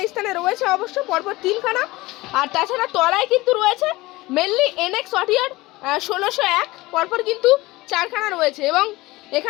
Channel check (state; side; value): quieter; right; 20.2 dB